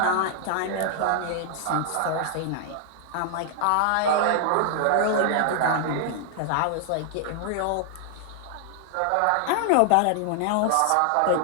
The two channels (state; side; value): different; both; correlation 0.00